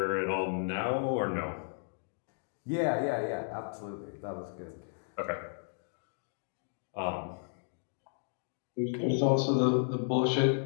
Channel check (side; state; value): right; silent; digital silence